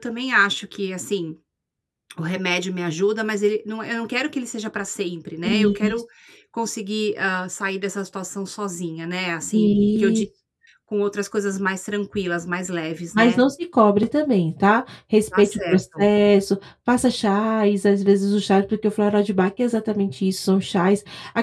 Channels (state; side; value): identical; both; correlation 1.00